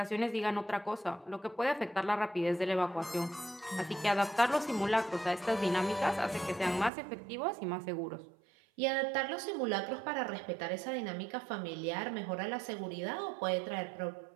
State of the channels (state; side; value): drops out; left; at 6.9 s